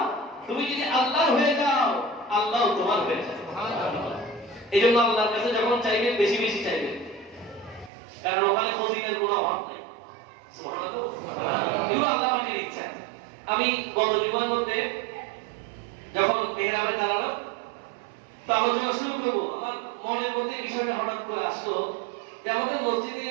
তুমি যদি আল্লাহর হয়ে যাও, আল্লাহ তোমার হয়ে যাবে। সুবহানাল্লাহ। এইজন্য আল্লাহর কাছে যখন চাইবেন বেশি বেশি চাইবেন, কারণ ওখানে ফজিলের কোনো অভাব নেই। সুবহানাল্লাহ। এগুলো আল্লাহ পাকের ইচ্ছা। আমি গত জুমার মধ্যে যখন মেহরাবে দাঁড়ালাম, তো আলোচনা শুরু করবো, আমার মনের মধ্যে বিষয়টা হঠাৎ করে আসলো যে আমাদের মসজিদে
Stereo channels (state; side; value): drops out; left; at 7.9 s